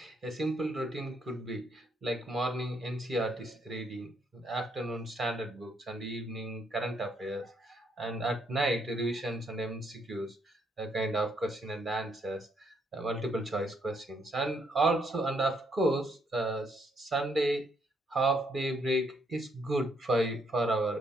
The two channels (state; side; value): normal; both; correlation 0.73